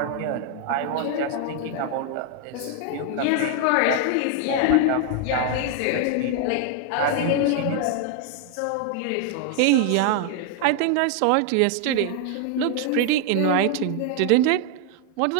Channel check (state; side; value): different; both; correlation 0.00